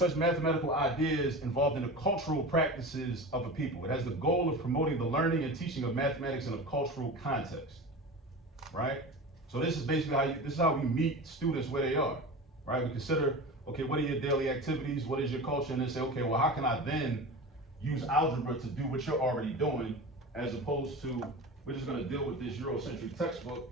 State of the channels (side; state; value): both; normal; correlation 0.31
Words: mathematical ideas involved in the cultural practices of a people. It has the goal of promoting the learning and teaching of mathematics in a cultural context, right? So this is basically how we meet students where they are, right? We consider, okay, what are your daily activities? What is your culture? And then say, okay, well, how can I then use algebra to do what you're already doing, as opposed to, we're just gonna deal with this Eurocentric textbook